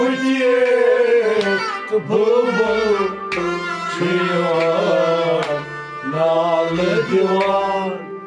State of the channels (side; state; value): both; identical; correlation 1.00